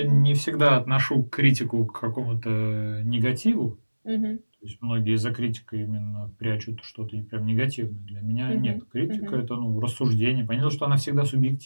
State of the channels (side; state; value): both; inverted; correlation -1.00